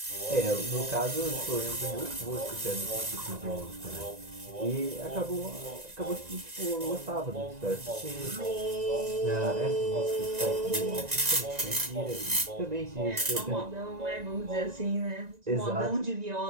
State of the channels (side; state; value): left; late; 1.9 ms